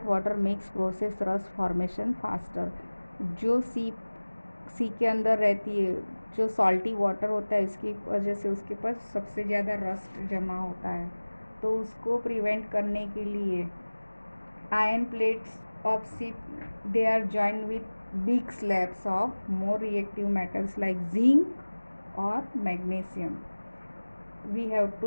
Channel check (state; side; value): inverted; both; correlation -1.00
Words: water makes process rust formation faster. जो सी के अंदर रहती है, जो salty water होता है, इसकी वजह से उसके पास सबसे ज़्यादा रस्ट जमा होता है. तो उसको प्रिवेंट करने के लिए iron plates of ship they are joined with big slabs of more reactive metals like zinc और magnesium. We have